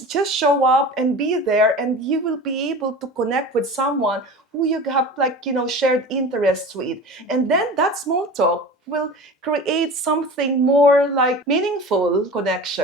show up and be there, and you will be able to connect with someone who you have shared interests with. And then that small talk will create something more meaningful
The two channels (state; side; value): normal; both; correlation 0.35